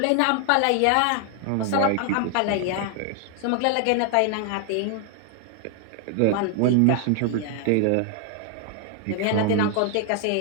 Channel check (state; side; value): different; both; correlation 0.00